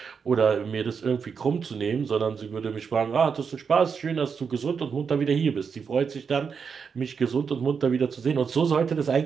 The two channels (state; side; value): quieter; left; 6.1 dB